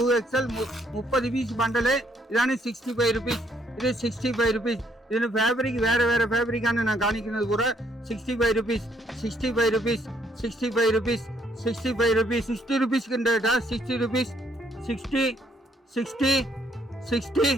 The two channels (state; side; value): normal; both; correlation 0.69